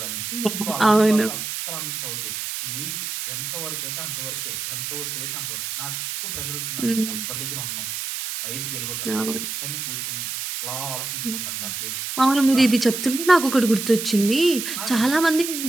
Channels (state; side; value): noise; right; hiss, 4 dB below the sound